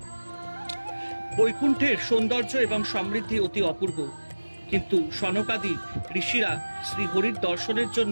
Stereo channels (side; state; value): both; inverted; correlation -1.00